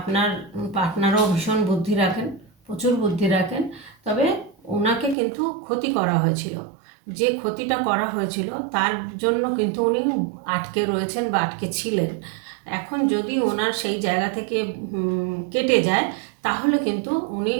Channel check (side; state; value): left; drops out; at 5.2 s